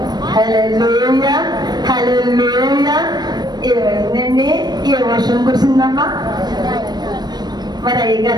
హల్లెలూయా, హల్లెలూయా. ఏమైందండి? ఏ వర్షం కురిసిందమ్మా? మరి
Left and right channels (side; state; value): left; late; 0.20 ms